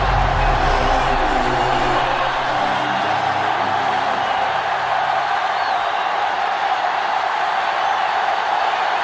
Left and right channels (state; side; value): identical; both; correlation 1.00